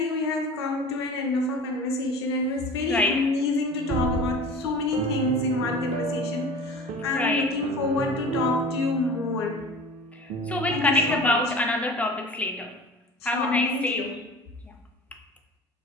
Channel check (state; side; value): normal; both; correlation 0.39